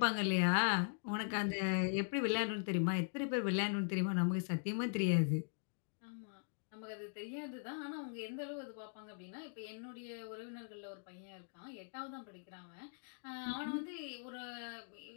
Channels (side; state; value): right; silent; digital silence